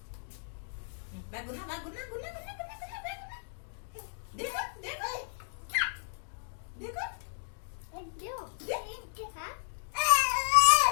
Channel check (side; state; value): right; silent; digital silence